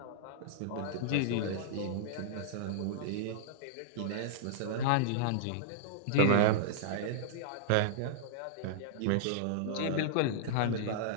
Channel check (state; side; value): different; both; correlation -0.02